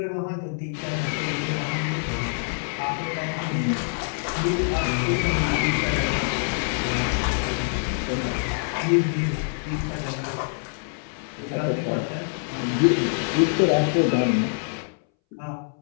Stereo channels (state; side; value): silent; right; 62 dB below the other